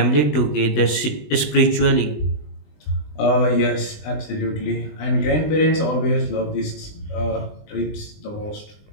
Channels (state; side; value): late; right; 20 ms